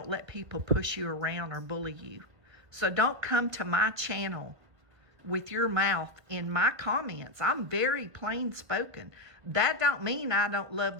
let people push you around or bully you. So don't come to my channel with your mouth in my comments. I'm very plain spoken. That don't mean I don't love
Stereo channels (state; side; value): late; left; 1.6 ms